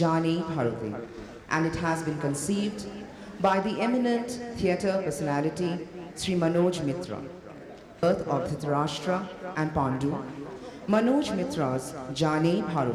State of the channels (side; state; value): both; identical; correlation 1.00